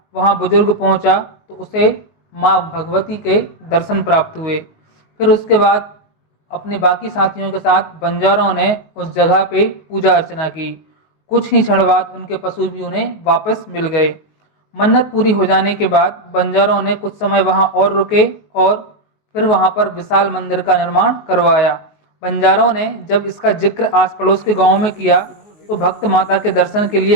वहाँ बुजुर्ग पहुँचा तो उसे माँ भगवती के दर्शन प्राप्त हुए। फिर उसके बाद अपने बाकी साथियों के साथ बंजारों ने उस जगह पे पूजा अर्चना की। कुछ ही क्षण बाद उनके पशु भी उन्हें वापस मिल गए। मन्नत पूरी हो जाने के बाद बंजारों ने कुछ समय वहां और रुके और फिर वहां पर विशाल मंदिर का निर्माण करवाया। बंजारों ने जब इसका जिक्र आस पड़ोस के गांवों में किया तो भक्त माता के दर्शन के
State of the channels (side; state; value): right; late; 19 ms